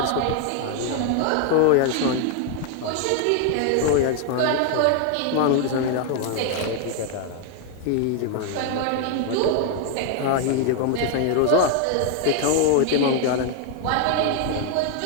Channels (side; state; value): both; different; correlation 0.00